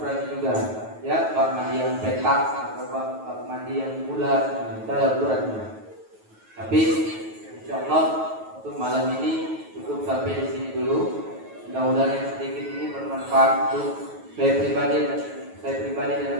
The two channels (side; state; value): left; late; 9.2 ms